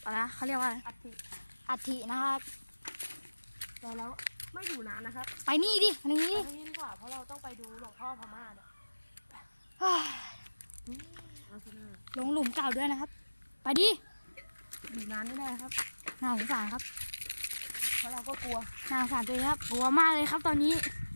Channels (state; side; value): inverted; both; correlation -1.00